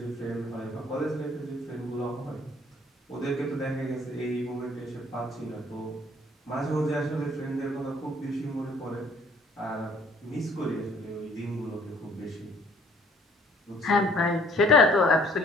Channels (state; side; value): normal; both; correlation 0.58